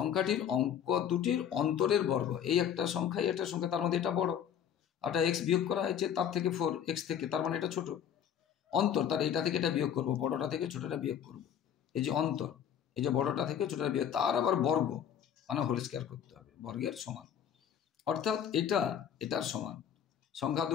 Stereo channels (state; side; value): quieter; right; 8.9 dB